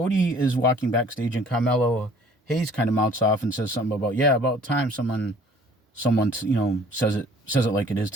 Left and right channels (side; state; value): both; normal; correlation 0.54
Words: is walking backstage, and Carmelo Hayes kind of mouths off and says something about time someone says it like it is